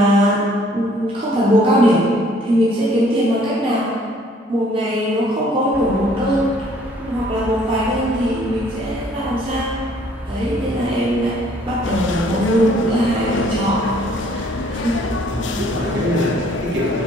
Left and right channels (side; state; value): both; normal; correlation 0.60